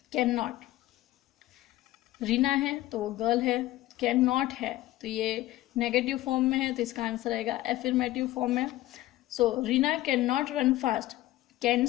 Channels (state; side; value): quieter; right; 16.1 dB